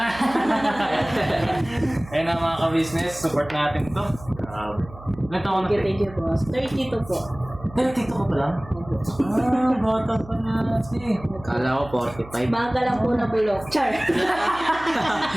Ayun na mga ka-business, support natin ito. Ilan taon na? Thank you, boss. 32 po. 32 ka pa lang? Bata pa na kasi. Kala ko 45. Baga lang po na bulok. Char.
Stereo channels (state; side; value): noise; right; hum, 17 dB below the sound